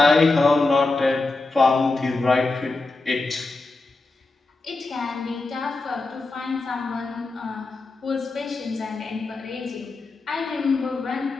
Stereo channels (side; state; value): right; quieter; 3.4 dB